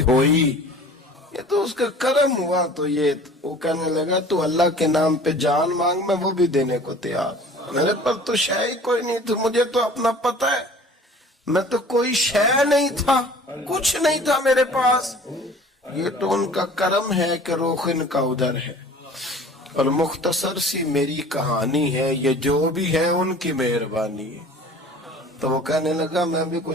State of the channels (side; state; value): both; normal; correlation 0.46